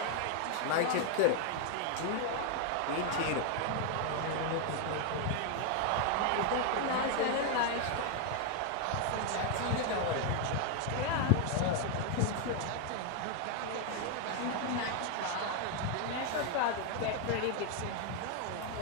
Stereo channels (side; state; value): both; different; correlation 0.00